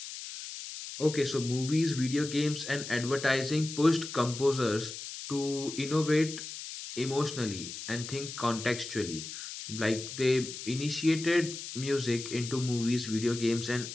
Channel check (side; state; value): left; noise; hiss, 9 dB below the sound